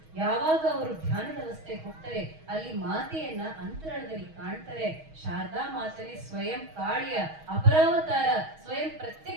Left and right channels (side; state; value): left; late; 6.3 ms